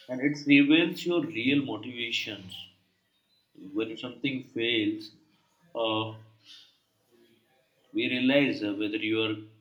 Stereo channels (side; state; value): both; identical; correlation 1.00